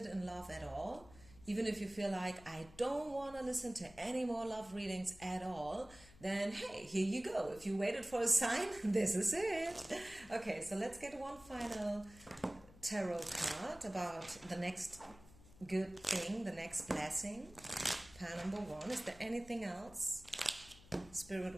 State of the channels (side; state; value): left; noise; hum, 21 dB below the sound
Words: in love at all, even if you feel like, I don't want to listen to any more love readings at all, then hey, here you go. If you waited for a sign, this is it. Okay, so let's get one final tarot card about the next good thing, the next blessing. Pile number 1. Is there anything else